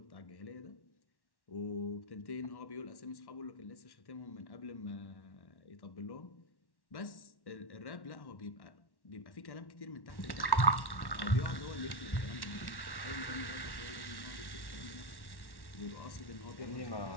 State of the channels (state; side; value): late; right; 1.1 ms